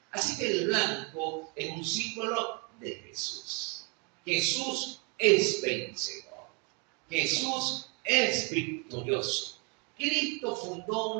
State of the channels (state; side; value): quieter; left; 33.0 dB